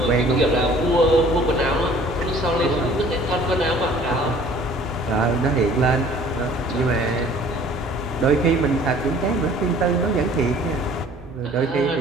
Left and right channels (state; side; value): noise; right; hum, 19 dB below the sound